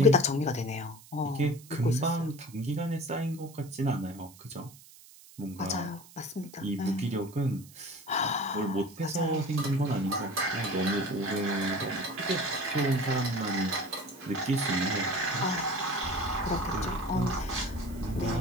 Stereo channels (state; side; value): noise; right; hiss, 21 dB below the sound